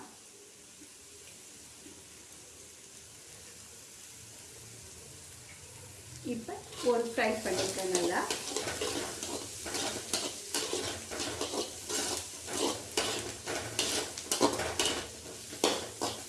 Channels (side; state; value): both; identical; correlation 1.00